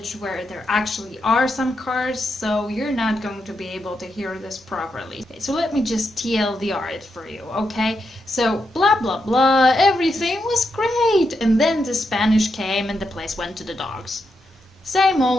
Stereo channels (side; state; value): both; normal; correlation 0.84